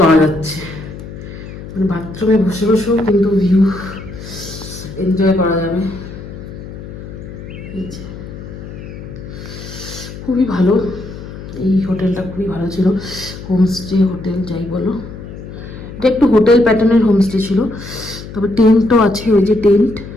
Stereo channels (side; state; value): left; noise; hum, 12 dB below the sound